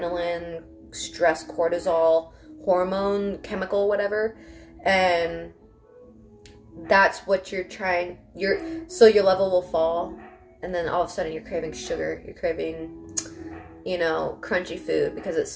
stress, cortisol, hormone, chemical, whatever. And that's what you're trying, so your level will fall, and then all of a sudden you're craving sugar, you're craving, crunchy food, because it's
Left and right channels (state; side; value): identical; both; correlation 1.00